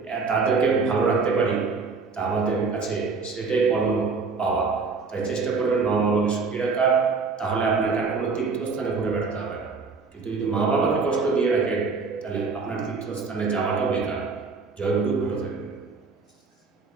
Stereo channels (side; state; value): left; quieter; 4.6 dB